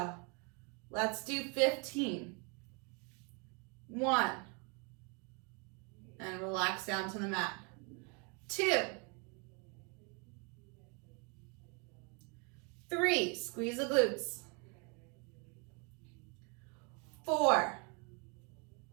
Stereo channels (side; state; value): left; quieter; 33.8 dB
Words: Let's do 15. 1. And relax down to the mat. 2. 3. Squeeze the glutes. 4.